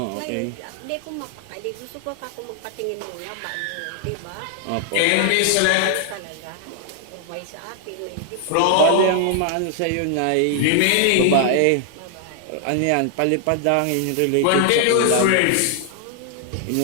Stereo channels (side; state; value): both; different; correlation 0.00